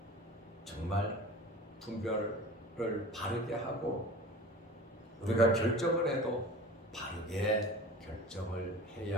정말 분별을 바르게 하고 우리가 결정을 해도 바르게 결정을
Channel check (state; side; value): normal; both; correlation 0.38